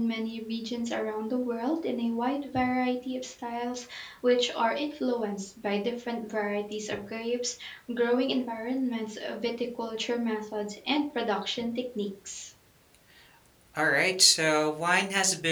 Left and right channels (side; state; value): both; identical; correlation 1.00